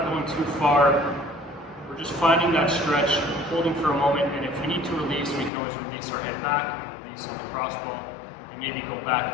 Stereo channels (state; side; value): drops out; right; at 5.5 s